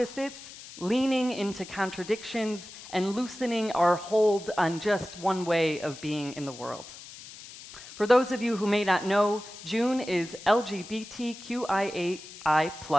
leaning into contradictions, and loosening our hold on just one way of being in the world. For those of you who may not know, June is LGBTQIA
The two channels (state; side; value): noise; left; hiss, 15 dB below the sound